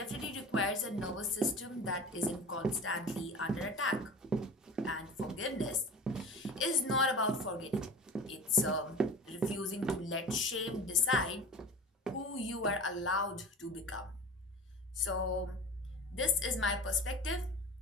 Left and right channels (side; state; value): both; normal; correlation 0.36